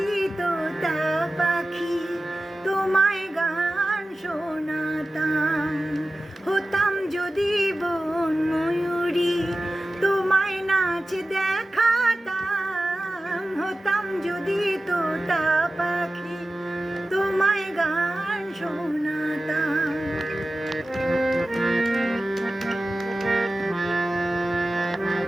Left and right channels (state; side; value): normal; both; correlation 0.95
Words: তোতা পাখি তোমায় গান শোনাতাম, হতাম যদি বন ময়ূরী তোমায় নাচ দেখাতাম, হতাম যদি তোতা পাখি তোমায় গান শোনাতাম।